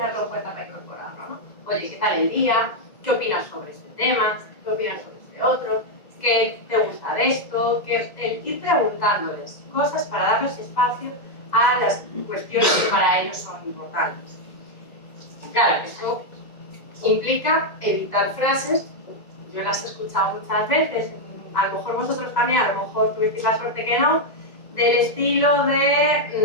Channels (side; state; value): right; late; 2.0 ms